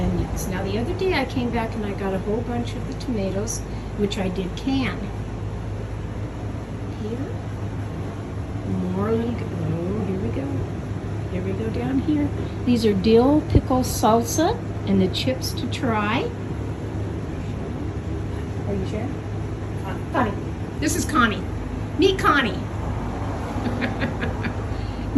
Now the other day I came back and I got a whole bunch of the tomatoes, which I did can. Here, more little, oh, here we go. Here we go down here. These are dill pickle salsa and the chips to try. Are you sure? Connie. This is Connie. Meet Connie.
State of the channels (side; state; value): both; identical; correlation 1.00